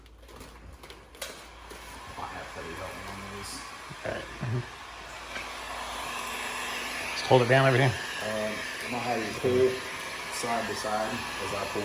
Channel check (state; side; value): identical; both; correlation 1.00